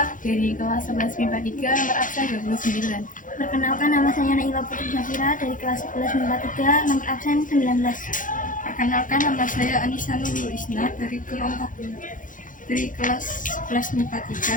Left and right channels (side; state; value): right; late; 0.38 ms